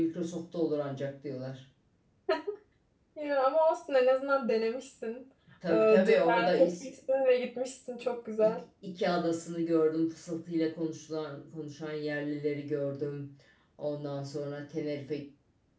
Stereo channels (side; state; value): both; identical; correlation 1.00